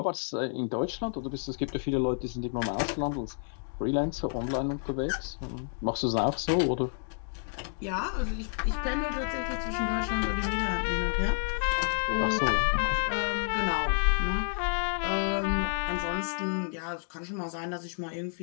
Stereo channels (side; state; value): right; silent; 58 dB below the other